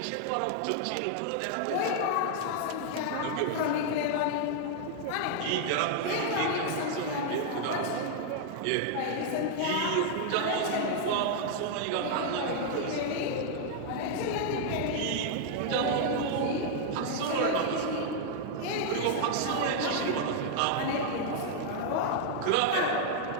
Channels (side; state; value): both; different; correlation 0.00